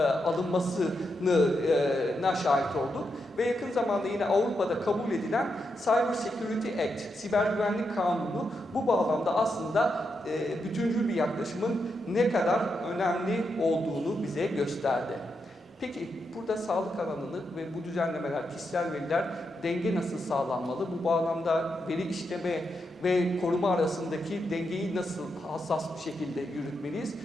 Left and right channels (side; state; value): both; normal; correlation 0.84